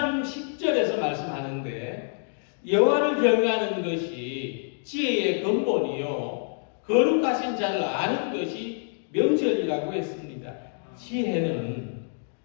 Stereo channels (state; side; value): silent; right; digital silence